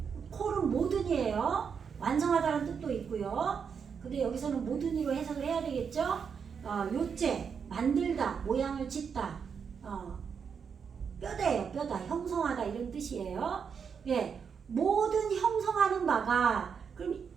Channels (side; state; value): left; quieter; 6.6 dB